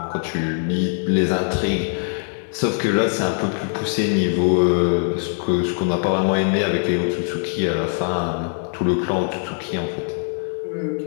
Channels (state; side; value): silent; right; 64 dB below the other